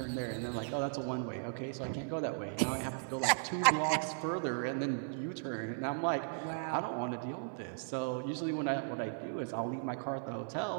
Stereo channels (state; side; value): silent; left; digital silence